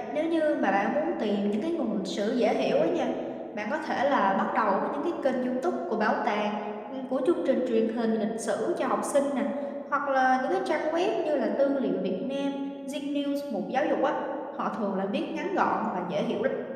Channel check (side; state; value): both; identical; correlation 1.00